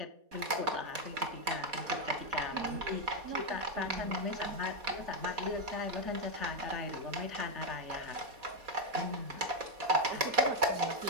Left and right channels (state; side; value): late; left; 4.2 ms